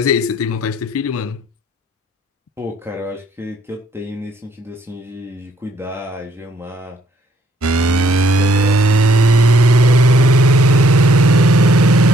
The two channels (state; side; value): normal; both; correlation 0.66